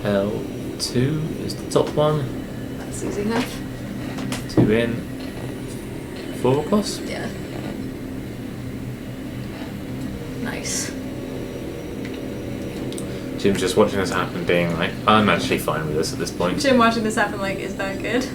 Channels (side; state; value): both; identical; correlation 1.00